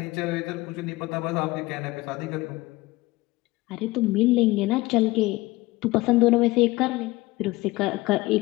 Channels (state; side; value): quieter; right; 20.2 dB